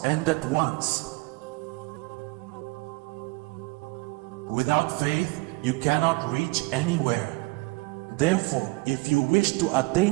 end at once. Without faith, you cannot reach anywhere. Therefore, if you wish to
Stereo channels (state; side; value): quieter; left; 25.2 dB